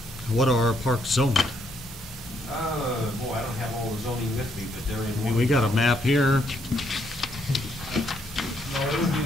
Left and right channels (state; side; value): normal; both; correlation 0.73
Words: What are our parks zoned? Boy, I don't have all the zoning with me, but they're in. I mean, we got a map here. No, it would be